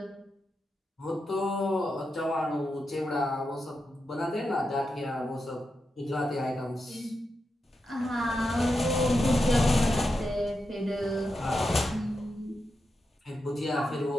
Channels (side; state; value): both; normal; correlation 0.87